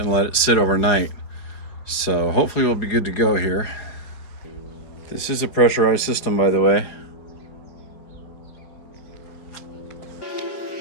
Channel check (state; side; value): late; right; 4.8 ms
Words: let it sit overnight. So hopefully we'll be good to go here. This is a pressurized system, by the way.